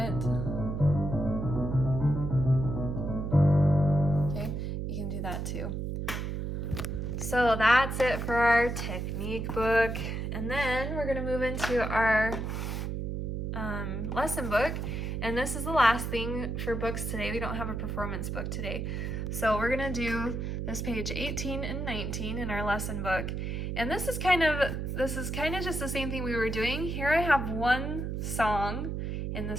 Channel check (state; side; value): noise; right; hum, 3 dB below the sound